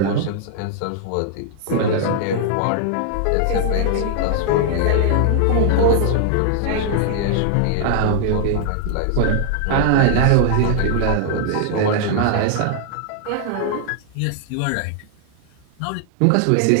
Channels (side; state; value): both; different; correlation 0.00